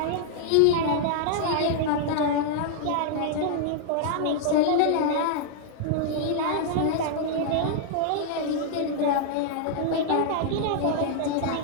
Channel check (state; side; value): different; both; correlation -0.01